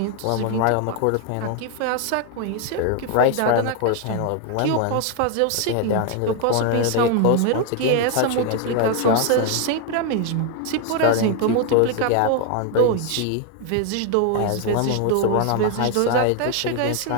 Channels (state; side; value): different; both; correlation 0.00